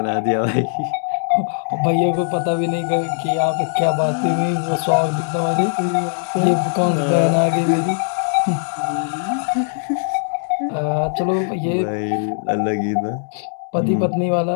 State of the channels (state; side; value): silent; right; digital silence